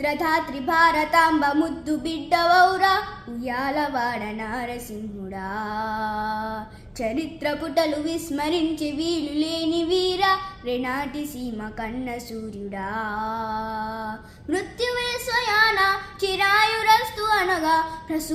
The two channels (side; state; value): both; identical; correlation 1.00